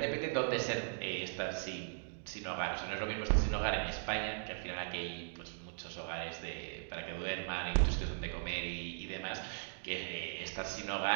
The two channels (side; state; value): left; silent; digital silence